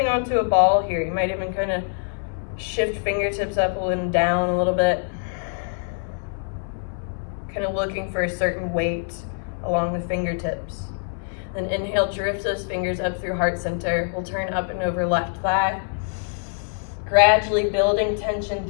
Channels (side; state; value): right; silent; digital silence